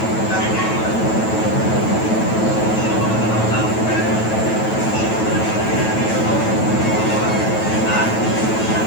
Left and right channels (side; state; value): right; late; 9.2 ms